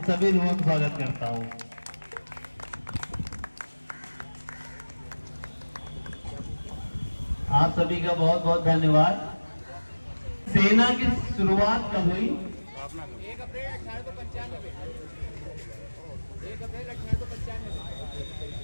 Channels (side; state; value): both; inverted; correlation -1.00